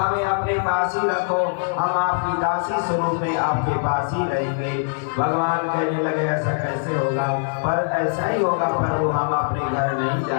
अपने पास ही रखो, हम आपकी दासी स्वरूप में आपके पास ही रहेंगे। भगवान कहने लगे, ऐसा कैसे होगा? पर ऐसा ही होगा प्रभु, हम अपने घर नहीं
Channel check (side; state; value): right; silent; digital silence